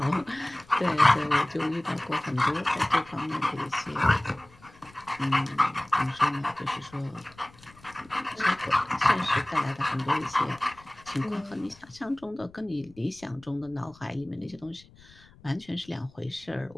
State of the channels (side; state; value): left; noise; rumble, 25 dB below the sound